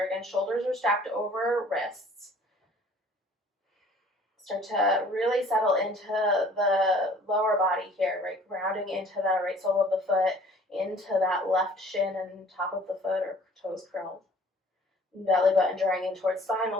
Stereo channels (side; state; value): both; normal; correlation 0.52